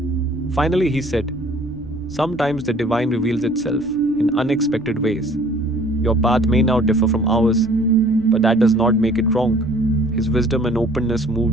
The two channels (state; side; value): noise; right; rumble, 20 dB below the sound